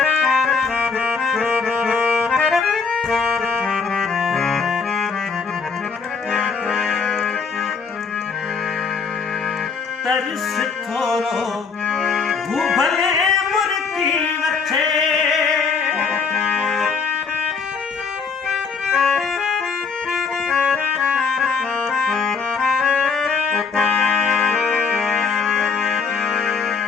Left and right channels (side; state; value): right; quieter; 5.4 dB